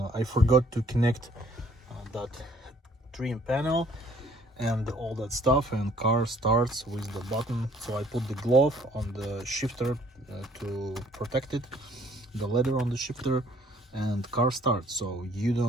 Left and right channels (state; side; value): normal; both; correlation 0.59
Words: I forgot to connect that trim panel and all that stuff, and car starts with the button. So I put the glove on the shifter to protect it, the leather on the shifter, and car starts. So you